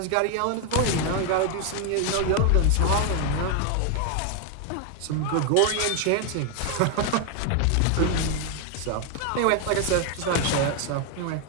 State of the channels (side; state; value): both; different; correlation 0.01